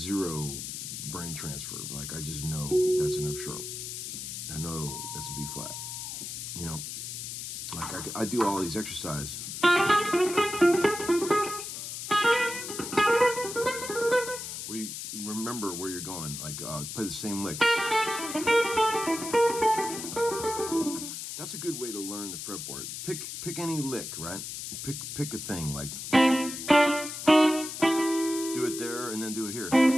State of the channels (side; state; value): left; noise; hiss, 7 dB below the sound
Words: brain transfer. Like, I just know that's an F sharp. I know that's a B flat. Like I do all these exercises. Where you remember where you're going. Like, play the same lick. That's a good way to learn the fretboard. Pick any lick, right? Pick a thing, like do it there, and then do it here,